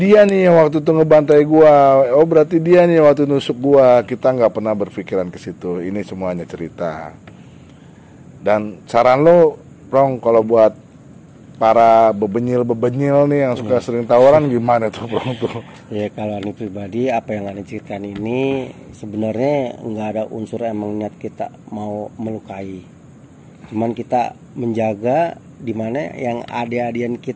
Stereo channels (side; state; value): both; identical; correlation 1.00